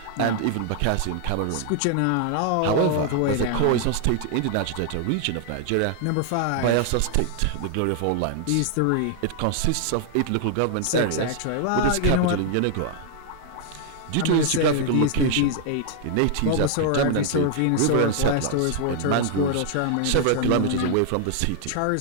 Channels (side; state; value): both; different; correlation 0.00